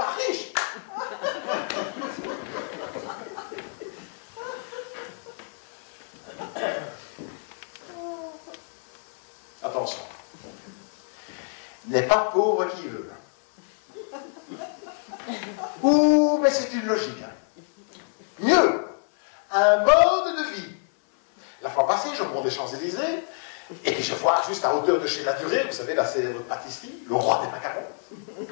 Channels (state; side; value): silent; right; 60 dB below the other